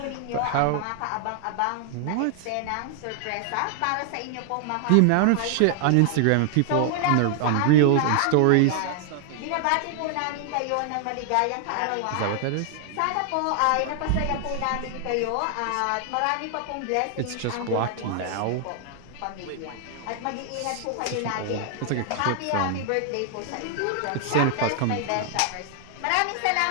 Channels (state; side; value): different; both; correlation 0.00